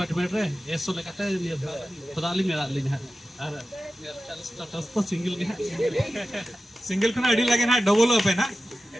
ᱨᱮ ᱮᱥᱳ ᱞᱮᱠᱟᱛᱮ ᱠᱷᱚᱫᱟ ᱞᱤᱧ ᱢᱮᱱᱟᱜ ᱞᱤᱧ ᱦᱟᱸᱜ ᱟᱨ ᱥᱴᱮᱴᱟᱥ ᱫᱚ ᱥᱤᱝᱜᱮᱞ ᱜᱮ ᱦᱟᱸᱜ सिंगल खना अड़ी लगे ना डबल अप है ना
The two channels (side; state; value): both; normal; correlation 0.93